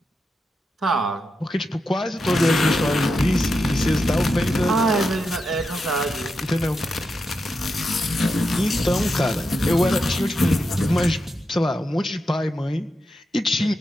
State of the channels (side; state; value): both; normal; correlation 0.87